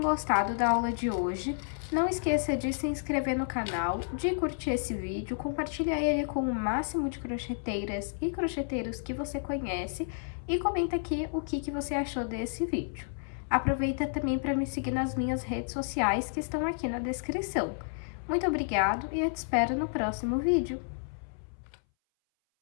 gostado da aula de hoje. Não esqueça de se inscrever no canal, de curtir esse vídeo, compartilhar ele com o máximo de crocheteiras e crocheteiros que você conhece e comenta aqui o que você achou desse vídeo. Aproveita também para me seguir nas minhas redes sociais que estão aqui na descrição. Muito obrigado e eu te espero no próximo vídeo.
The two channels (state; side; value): silent; right; 57 dB below the other